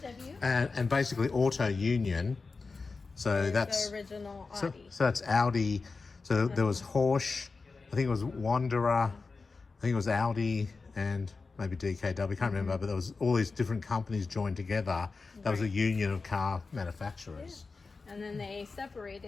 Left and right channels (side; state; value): right; quieter; 4.2 dB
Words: And basically Auto Union. So that's the original so Audi. that's Audi. So there was Horsch, I think it was Wanderer, I think it was Audi and maybe DKW, I can't remember, but there was all these different companies joined together. That was a union of car manufacturers. And then they